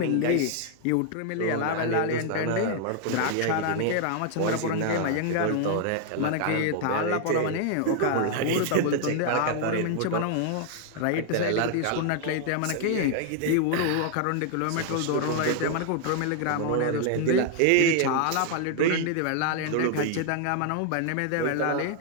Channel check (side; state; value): both; different; correlation 0.00